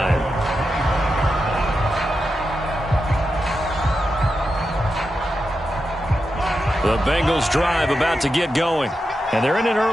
The Bengals drive about to get going. And they're in an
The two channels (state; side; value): normal; both; correlation 0.88